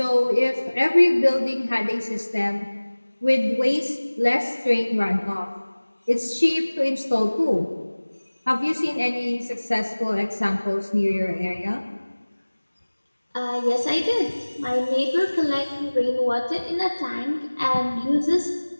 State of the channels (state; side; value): inverted; both; correlation -1.00